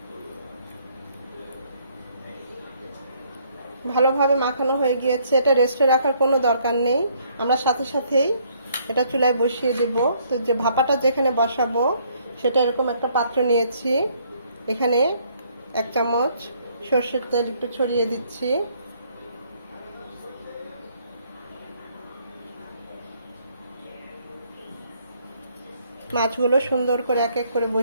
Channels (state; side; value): inverted; both; correlation -0.66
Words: ভালোভাবে মাখানো হয়ে গিয়েছে। এটা রেস্টে রাখার কোনো দরকার নেই, আমরা সাথে সাথেই এটা চুলায় বসিয়ে দেব। তো যে ভাপাটা যেখানে বসাবো সেটা এরকম একটা পাত্র নিয়েছি। এখানে 1 চামচ সরষের তেল একটু ছড়িয়ে দিচ্ছি। মাছগুলো সুন্দর করে এক এক করে